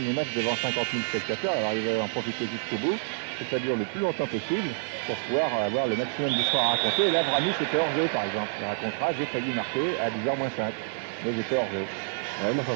match devant 50 000 spectateurs. Alors ils veulent en profiter jusqu'au bout, que ça dure le plus longtemps possible, pour pouvoir avoir le maximum d'histoires à raconter. Et là, Vramis était hors jeu, par exemple. Il racontera, j'ai failli marquer à 10h moins 5, mais j'étais hors jeu. Ouais, mais enfin,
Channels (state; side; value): silent; left; 59 dB below the other